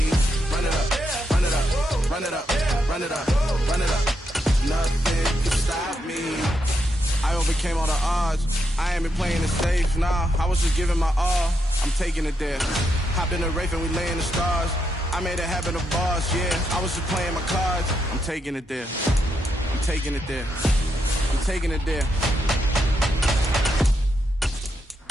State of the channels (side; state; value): both; normal; correlation 0.81